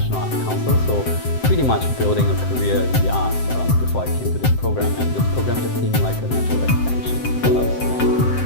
Arts Council, so pretty much building a career in the arts before I came to this program, and this program just seemed like a natural extension for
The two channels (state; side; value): late; right; 7.7 ms